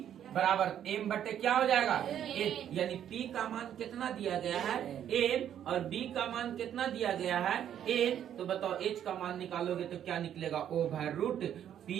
बराबर m बटे क्या हो जाएगा? m। यानी p का मान कितना दिया गया है? m, और b का मान कितना दिया गया है? n। तो बताओ h का मान निकालोगे तो क्या निकलेगा? ओवर रूट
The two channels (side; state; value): left; quieter; 10.0 dB